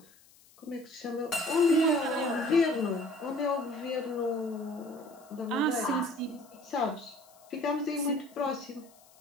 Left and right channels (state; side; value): noise; left; hiss, 27 dB below the sound